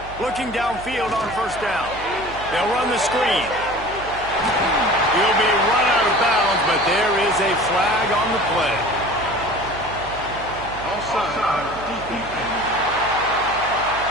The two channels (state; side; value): noise; right; hum, 15 dB below the sound